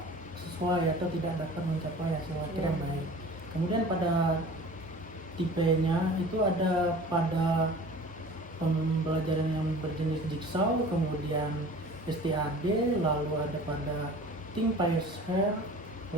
sesuai atau tidak dapat mencapai hasil akhir yang baik. Kemudian pada tipenya itu ada pada pembelajaran yang berjenis jigsaw, kemudian STAD, lalu ada pada Think Pair,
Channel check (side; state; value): both; normal; correlation 0.42